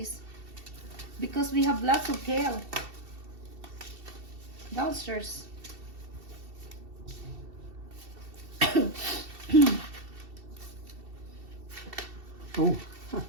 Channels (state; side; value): late; left; 2.7 ms